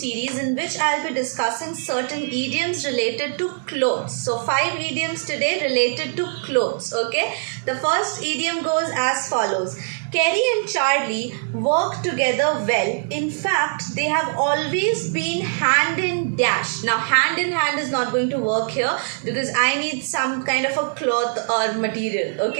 in which I'll be discussing certain idioms related to clothes. So 5 idioms today related to clothes, okay? The first idiom goes as follows. Kerry and Charlie work together well. In fact, they have always been hand in dash. Now, hand in hand is not going to work here because I need some kind of a cloth or material,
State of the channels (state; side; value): silent; left; digital silence